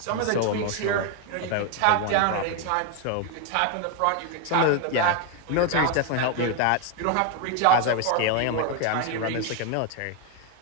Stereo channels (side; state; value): both; different; correlation 0.01